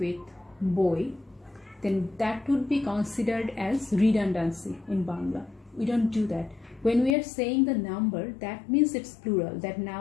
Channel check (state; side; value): drops out; right; at 7.2 s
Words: boy, then that would be considered as redundancy in Bangla. We don't do that. When we are saying the number, that means it's plural. That